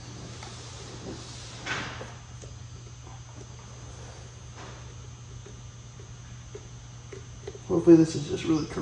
Hopefully this is just really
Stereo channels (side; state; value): both; identical; correlation 1.00